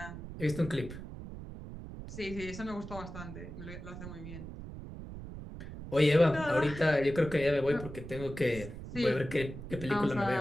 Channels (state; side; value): noise; right; rumble, 11 dB below the sound